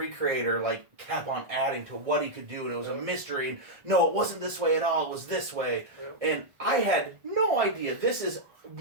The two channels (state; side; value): late; left; 1.5 ms